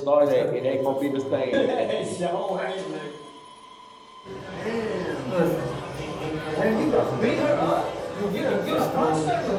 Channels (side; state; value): both; identical; correlation 1.00